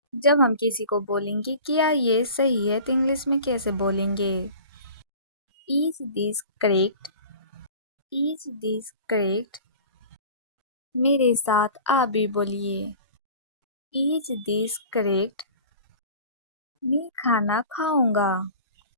जब हम किसी को बोलेंगे क्या ये सही है तो इंग्लिश में कैसे बोलेंगे? Is this correct? Is this correct? मेरे साथ आप भी बोलिए. Is this correct? मैं खाना खाऊंगा.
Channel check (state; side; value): inverted; both; correlation -0.42